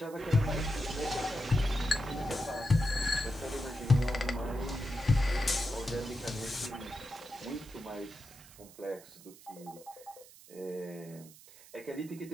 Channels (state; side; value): noise; right; hiss, 20 dB below the sound